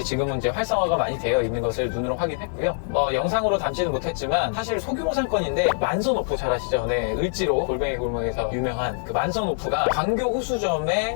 지금은 이제 활성화가 많이 되어 있는 것을 눈으로 확인했고요. 영상으로 담지는 못했지만 사실 소규모 상권인데 만선오프 잘 아시죠? 네, 을지로 골뱅이 골목에서 유명한 그 만선오프가 광교 호수점에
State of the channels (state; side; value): silent; right; digital silence